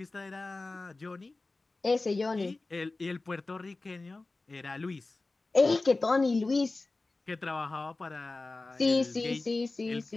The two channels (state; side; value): quieter; right; 3.3 dB